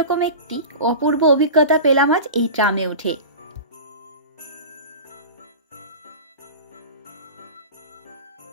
একটি অপূর্ব অভিজ্ঞতা পেলাম আজ এই ট্রামে উঠে।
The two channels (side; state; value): both; inverted; correlation -0.31